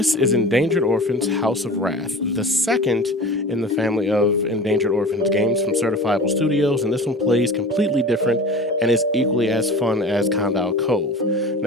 is Endangered Orphans House of Wrath, the second in the family of Endangered Orphans games from Certifiable Studios, and this one plays completely different and is equally as fun as Condal Cove.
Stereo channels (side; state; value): both; normal; correlation 0.37